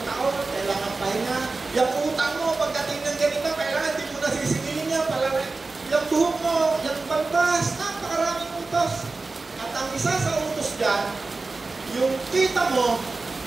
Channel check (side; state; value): left; quieter; 3.7 dB